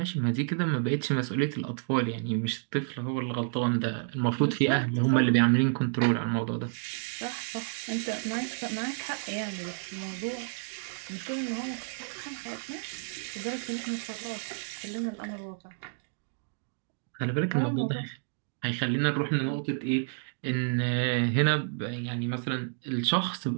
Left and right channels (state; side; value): silent; left; digital silence